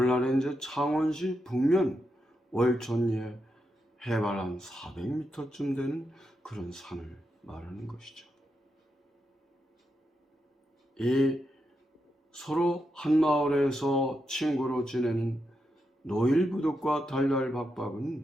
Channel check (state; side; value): normal; both; correlation 0.85